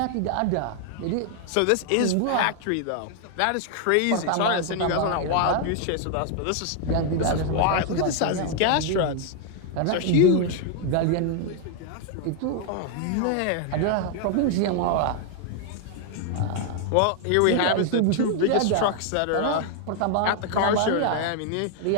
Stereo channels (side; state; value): both; different; correlation 0.00